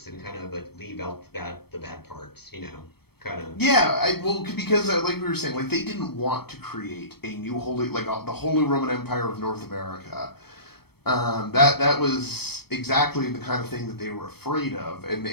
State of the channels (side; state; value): right; late; 0.96 ms